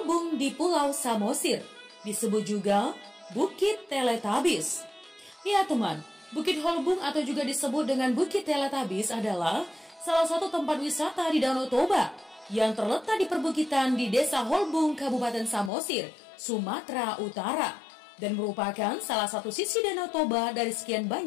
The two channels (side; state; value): right; drops out; at 15.7 s